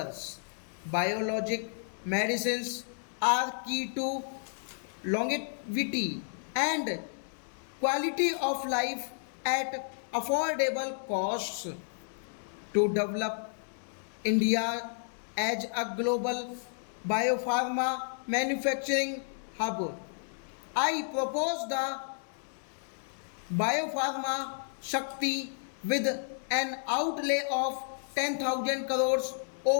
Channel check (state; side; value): silent; right; digital silence